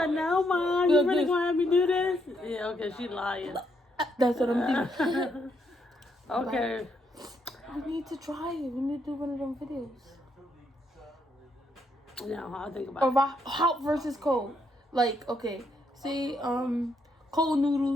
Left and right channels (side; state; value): both; normal; correlation 0.76